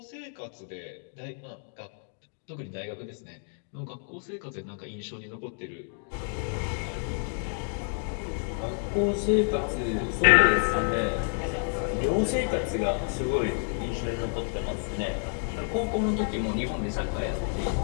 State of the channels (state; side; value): silent; right; 58 dB below the other